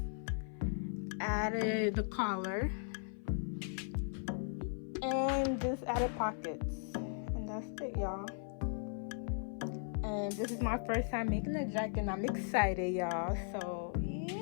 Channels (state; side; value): silent; right; 53 dB below the other